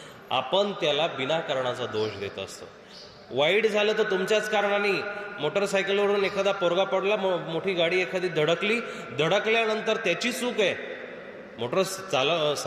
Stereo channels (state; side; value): identical; both; correlation 1.00